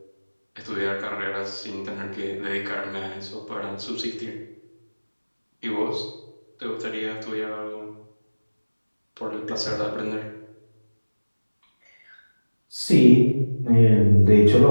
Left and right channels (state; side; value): inverted; both; correlation -1.00